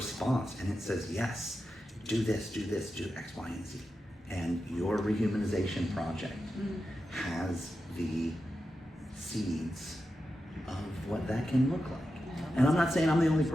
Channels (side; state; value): both; normal; correlation 0.90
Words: and it says, yes, do this, do X, Y, and Z. And your rehumanization project has the seeds of what that can look like. And I'm not saying I'm the only